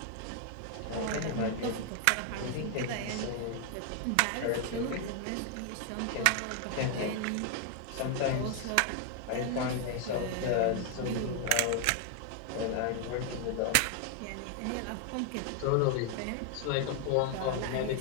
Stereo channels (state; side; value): different; both; correlation 0.00